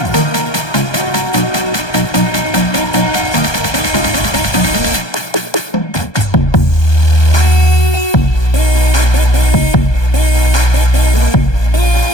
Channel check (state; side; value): late; right; 1.2 ms